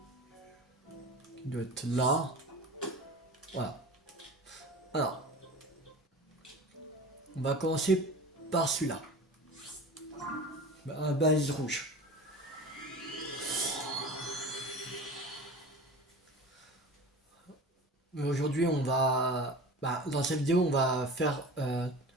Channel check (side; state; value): both; normal; correlation 0.35